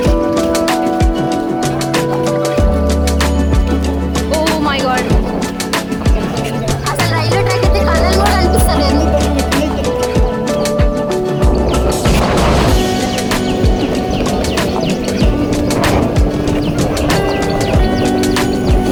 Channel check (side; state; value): both; identical; correlation 1.00